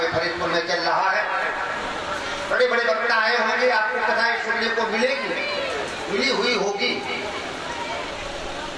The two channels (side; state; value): both; identical; correlation 1.00